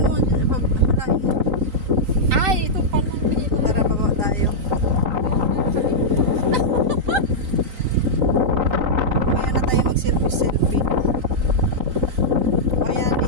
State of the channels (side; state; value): left; late; 3.9 ms